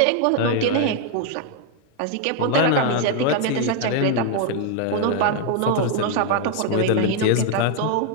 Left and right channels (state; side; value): different; both; correlation 0.00